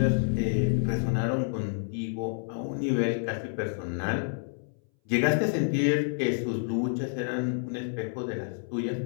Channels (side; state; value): right; silent; 59 dB below the other